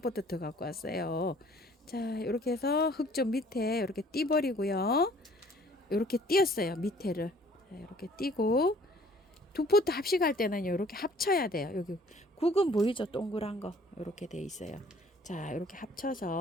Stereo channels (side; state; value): both; normal; correlation 0.56